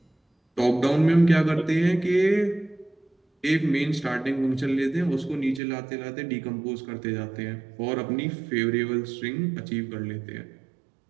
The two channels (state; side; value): drops out; left; at 5.6 s